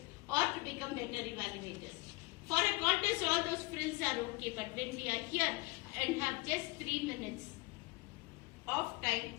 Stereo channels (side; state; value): right; quieter; 25.3 dB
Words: or to become better evaluators? For a contest, all those frills are okay, but when we are here and have just 3 minutes of time